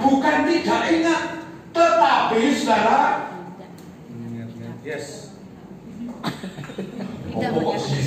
bukan tidak ingat, tetapi saudara. Yes.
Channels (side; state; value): both; identical; correlation 1.00